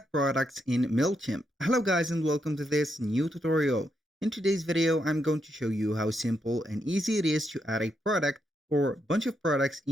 products in Mailchimp. Hello guys and welcome to this new tutorial. In today's video, I'm going to show you how simple and easy it is to add a product or a bunch of products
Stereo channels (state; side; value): normal; both; correlation 0.80